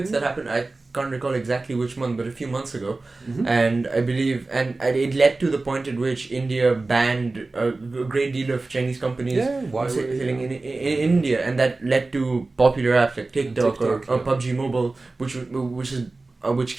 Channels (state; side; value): quieter; left; 3.4 dB